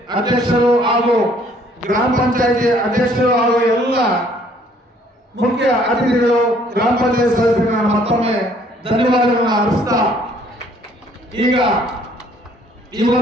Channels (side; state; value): both; normal; correlation 0.61